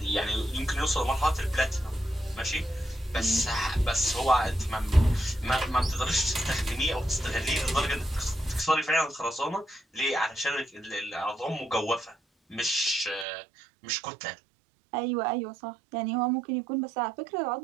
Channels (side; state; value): left; drops out; at 13.2 s